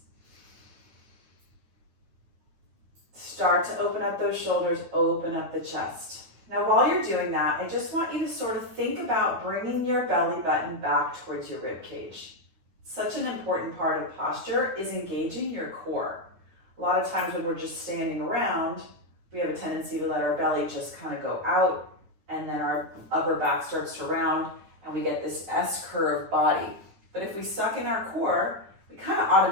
Start to open up those shoulders, open up the chest. Now while you're doing that, I just want you to sort of think about bringing your belly button back towards your rib cage. Such an important part of posture is engaging your core. A lot of times when we're just standing around, we have a tendency to let our belly just kind of go out, and then our upper back starts to round and we get this S-curve body. But if we suck in our core, we kind of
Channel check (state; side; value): late; left; 9.6 ms